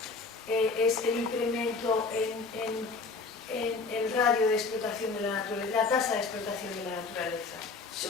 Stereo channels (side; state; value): right; quieter; 4.2 dB